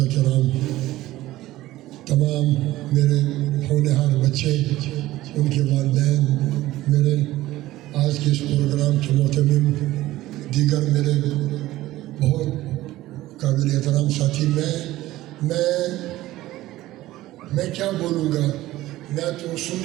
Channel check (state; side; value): quieter; left; 16.2 dB